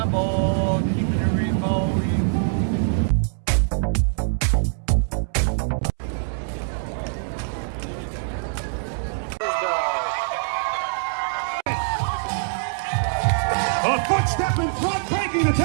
keeping it remote. A footstep in front, breaking the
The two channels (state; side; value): silent; left; 63 dB below the other